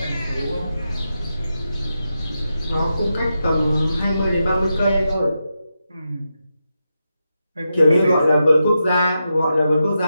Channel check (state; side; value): inverted; both; correlation -0.88